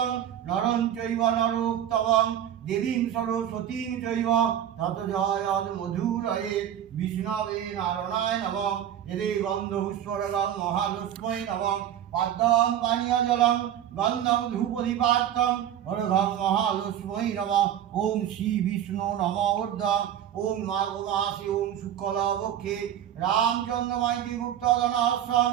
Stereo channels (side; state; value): left; quieter; 10.4 dB